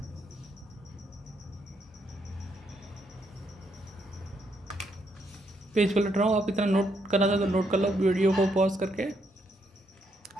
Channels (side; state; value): both; normal; correlation 0.76